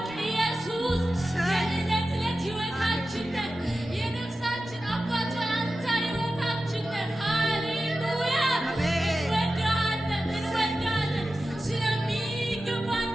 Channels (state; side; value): normal; both; correlation 0.93